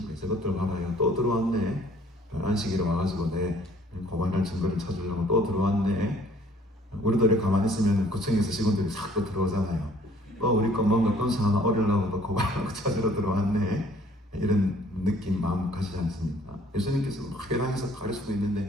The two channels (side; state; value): both; normal; correlation 0.57